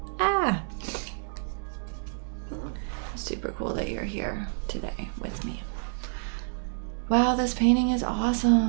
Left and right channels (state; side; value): silent; left; digital silence